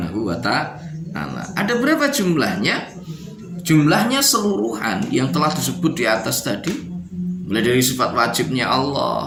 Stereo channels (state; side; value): identical; both; correlation 1.00